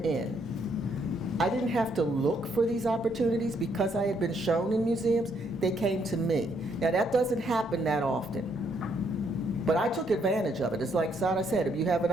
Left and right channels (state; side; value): normal; both; correlation 0.72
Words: I didn't have to look for these opportunities because I had been shown in museums, they came to me. Now that doesn't happen that often, but I took advantage of it. It's like Sara said, if you have an